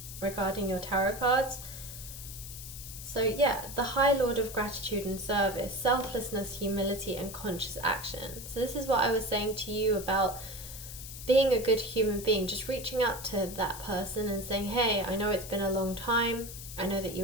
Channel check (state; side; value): noise; left; hiss, 11 dB below the sound